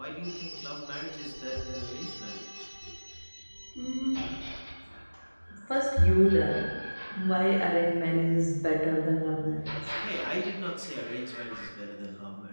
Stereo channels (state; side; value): inverted; both; correlation -1.00